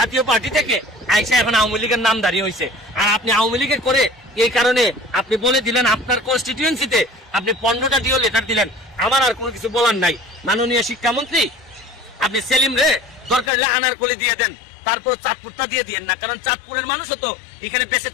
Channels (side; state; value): right; drops out; at 13.5 s